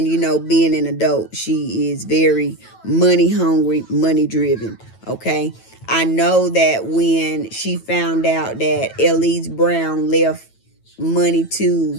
you know, being an adult, she is very money hungry, money driven. Okay, I know that when she found out that Elise Brown left money to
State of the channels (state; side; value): late; right; 9.1 ms